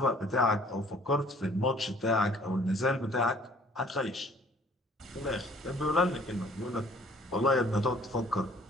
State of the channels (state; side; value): normal; both; correlation 0.56